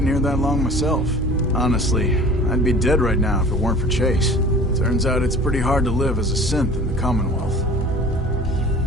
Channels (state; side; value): normal; both; correlation 0.44